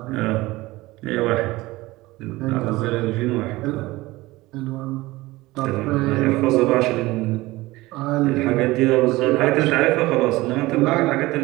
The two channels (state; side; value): quieter; left; 19.6 dB